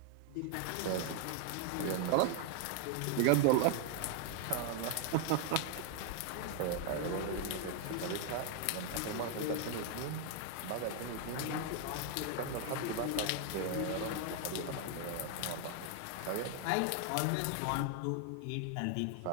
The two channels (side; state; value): both; different; correlation 0.00